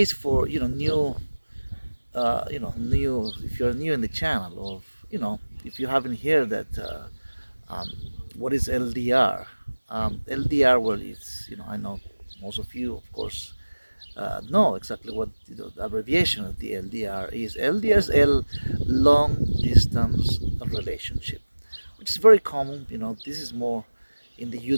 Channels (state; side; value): inverted; both; correlation -1.00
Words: for new, if you're new in the channel, or if you haven't heard that, what is LDR? LDR, well, it's I know most of you, of course, know exactly what the abbreviation of the LDR is. LDR is long distance relationship, which is very common. This is more in the